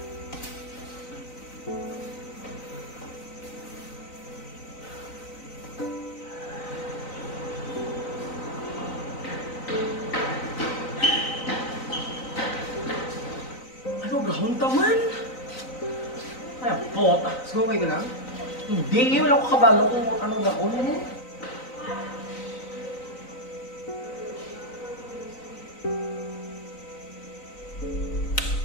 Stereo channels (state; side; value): late; right; 3.9 ms